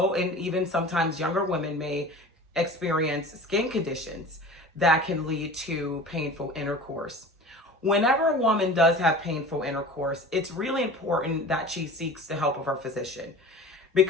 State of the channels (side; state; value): both; normal; correlation 0.38